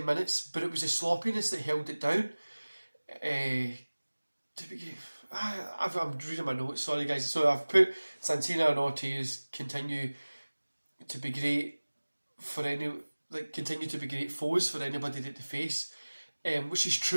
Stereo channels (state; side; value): inverted; both; correlation -1.00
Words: minutes, but it was the sloppiness that held it down. I'm reading my notes, sorry guys. So I've put Santana and Ortiz continue to be great foes for anybody that they face, which is